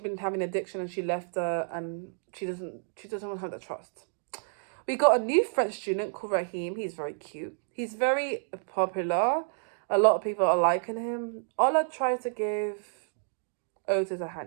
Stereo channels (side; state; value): left; silent; digital silence